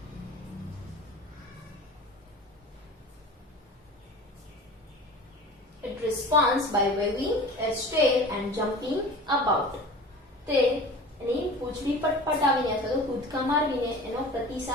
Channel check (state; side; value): normal; both; correlation 0.38